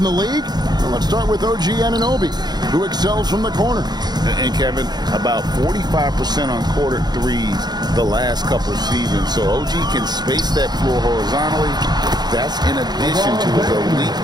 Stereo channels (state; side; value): late; left; 0.20 ms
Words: the league. Well, let's start with OG Anunoby, who excels from the corner. And Kevin, about 45% on quarter threes the last couple of seasons. So OG can space that floor horizontally. That's in addition to his elite